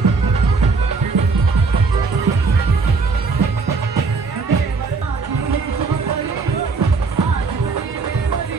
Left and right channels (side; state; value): left; quieter; 4.4 dB